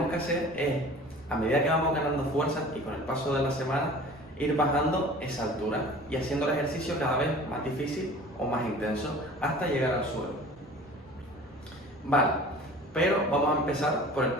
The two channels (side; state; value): both; normal; correlation 0.43